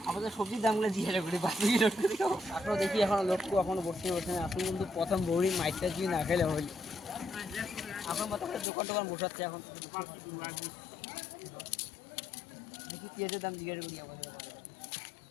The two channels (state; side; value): drops out; right; at 8.7 s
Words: আমাদের সবজির দামগুলো জিজ্ঞাসা করি বাকি এখনো দেখি। এখনো লক্ষ্য এখনো বসে না। আপনি কিন্তু প্রথম বৌড়ি মাইকটা যদি না খেলে হইল। এখন কত দোকান টোকান বসাচ্ছে। এখন দেখি পেঁয়াজের দাম জিজ্ঞাসা করি আমাদের।